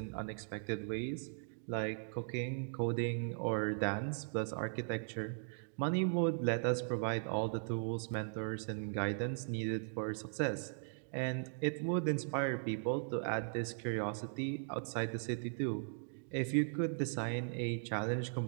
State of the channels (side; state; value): left; silent; digital silence